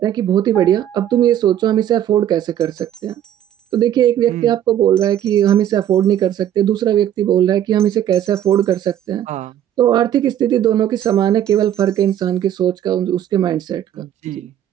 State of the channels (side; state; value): left; quieter; 11.0 dB